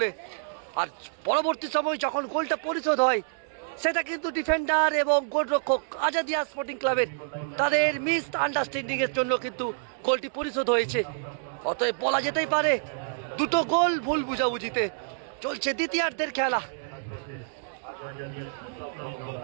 আর পরবর্তী সময় যখন গোলটা পরিশোধ হয় সেটা কিন্তু ডিফেন্ডার এবং গোলরক্ষক আজাদিয়া স্পোর্টিং ক্লাবের তাদের মিস আন্ডারস্ট্যান্ডিং এর জন্য কিন্তু গোলটি পরিশোধ হয়েছে। অতএব বলা যেতেই পারে দুটো গোল ভুল বুঝাবুঝিতে। চলছে দ্বিতীয়ার্ধের খেলা।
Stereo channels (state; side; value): silent; left; digital silence